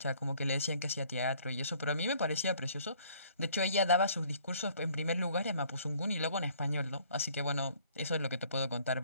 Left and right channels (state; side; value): inverted; both; correlation -0.59